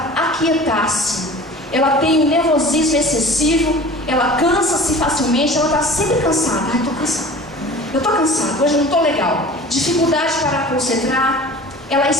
aquietar-se. Ela tem um nervosismo excessivo, ela cansa-se facilmente, ela está sempre cansada. Ai, estou cansada. Eu estou cansada, hoje não estou legal. Dificuldade para concentrar, ela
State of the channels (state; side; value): normal; both; correlation 0.41